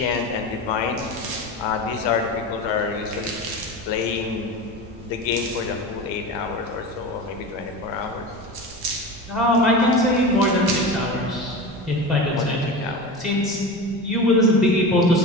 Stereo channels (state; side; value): noise; right; rumble, 21 dB below the sound